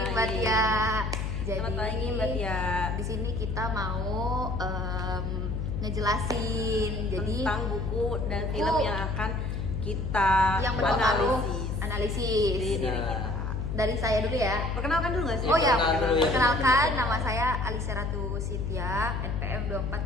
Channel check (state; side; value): noise; left; hum, 2 dB below the sound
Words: Mbak Tia. Selamat pagi, Mbak Tia. Di sini kita mau ngejelasin Tentang buku dan buku film yang akan kita yang berpengaruh analisis di analisis. diri kita. Dari saya dulu ya. Perkenalkan dulu nggak sih? Oh ya, perkenalkan dulu ya. perkenalkan nama saya Alisa Ratu Cynthia, NPM